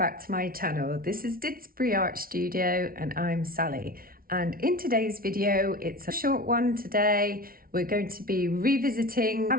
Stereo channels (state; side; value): late; left; 0.43 ms